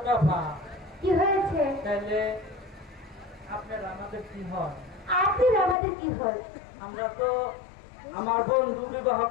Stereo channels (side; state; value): right; drops out; at 5.8 s